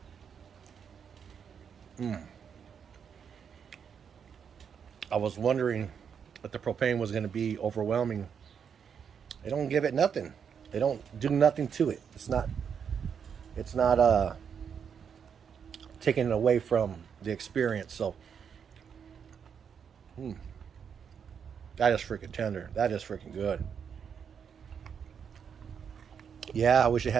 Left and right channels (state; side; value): quieter; left; 7.2 dB